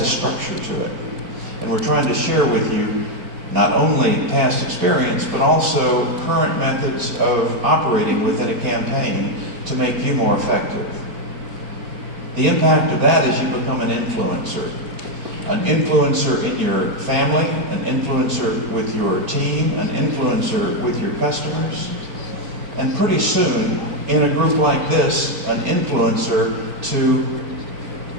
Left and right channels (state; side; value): late; left; 4.5 ms